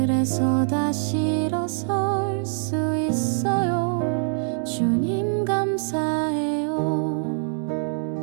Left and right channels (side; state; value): left; silent; 63 dB below the other